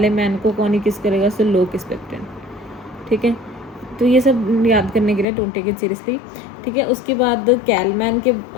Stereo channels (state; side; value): drops out; right; at 5.2 s